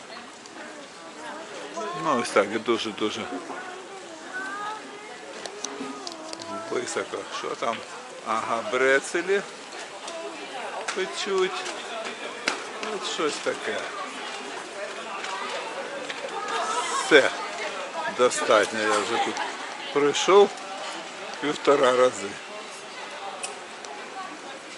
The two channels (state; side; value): identical; both; correlation 1.00